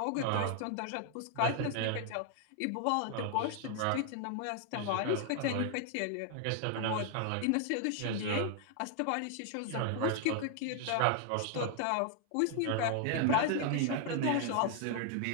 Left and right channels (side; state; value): both; different; correlation 0.00